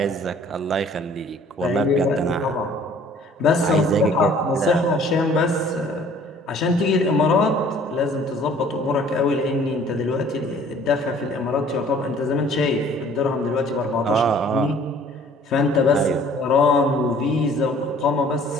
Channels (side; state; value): both; normal; correlation 0.54